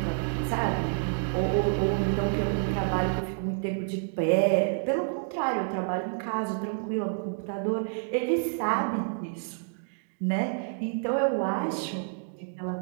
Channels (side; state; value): left; silent; digital silence